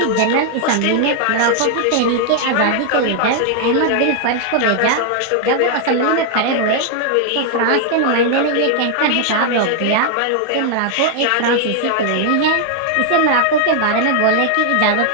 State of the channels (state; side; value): different; both; correlation 0.00